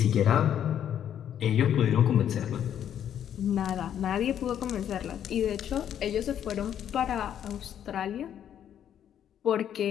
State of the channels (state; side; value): quieter; right; 9.8 dB